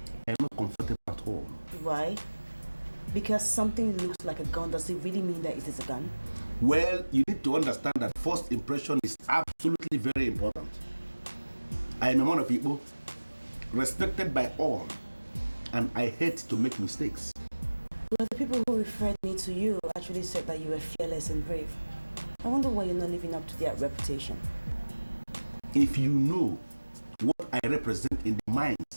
I am not comfortable at all. Why? Because something looks like a gun, does it really mean that it is a gun? Well, you need to understand that first impression is absolutely very important. I am a man of Igbo, respected by all, and I hate to make mistakes. Well, the people who referred me to you actually said that you were fearless and brave. I wonder why you're not living up to their reputation. If you know what I represent in the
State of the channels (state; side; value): inverted; both; correlation -1.00